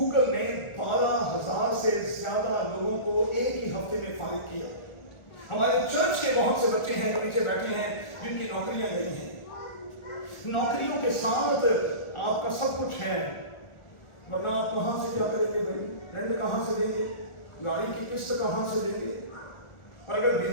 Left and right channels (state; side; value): late; right; 1.4 ms